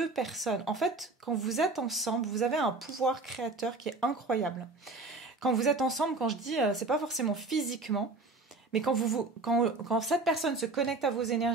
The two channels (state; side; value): quieter; left; 3.4 dB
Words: personnes. En fait, quand vous êtes ensemble, vous avez un pouvoir créateur qui est incroyable. Quand vous êtes ensemble, quand je dis, c'est pas forcément physiquement, mais quand cette personne se connecte à vos